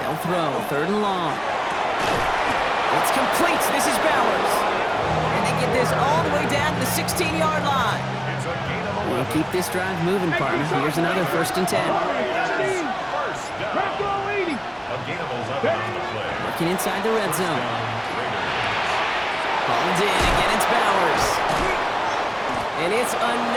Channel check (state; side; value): identical; both; correlation 1.00